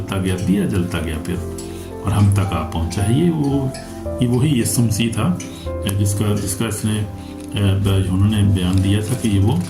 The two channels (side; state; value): both; identical; correlation 1.00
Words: गया, दिया जलता गया फिर, और हम तक आ पहुंचा है। ये वही यीशु मसीह था जिसका इसने उन्होंने बयान दिया था कि ये वो